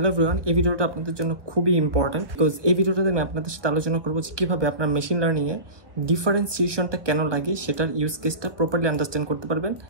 everyone, এই ভিডিওটা আপনাদের জন্য খুবই ইম্পর্টেন্ট বিকজ এই ভিডিওটাতে আমি আপনাদের সাথে আলোচনা করবো যে কীভাবে আপনার মেশিন লার্নিংয়ে ডিফারেন্সিয়েশনটা কেন লাগে সেটার ইউজ কেসটা প্রপারলি আন্ডারস্ট্যান্ড করতে পারবেন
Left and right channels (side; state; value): left; late; 1.2 ms